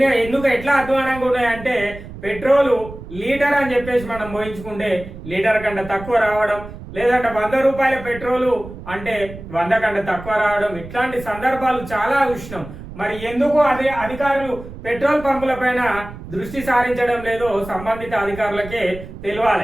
ఎట్లా అధ్వానంగా ఉన్నాయంటే పెట్రోలు లీటర్ అని చెప్పేసి మనం మోయించుకుంటే లీటర్ కంటే తక్కువ రావడం, లేదంటే 100 రూపాయల పెట్రోలు అంటే 100 కంటే తక్కువ రావడం, ఇట్లాంటి సందర్భాలు చాలా ఉష్ణం. మరి ఎందుకు అధికారులు పెట్రోల్ పంపుల పైన దృష్టి సారించడం లేదో సంబంధిత అధికారులకే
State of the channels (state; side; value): noise; right; rumble, 13 dB below the sound